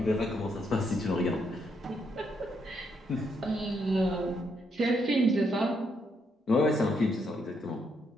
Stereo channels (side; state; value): both; normal; correlation 0.76